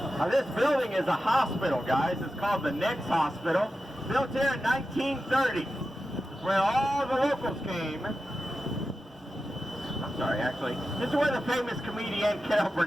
Now this building is a hospital, guys. It's called the Nix Hospital. Built here in 1930. It's where all the locals came. I'm sorry, actually. This is where the famous comedian Carol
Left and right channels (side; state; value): both; normal; correlation 0.92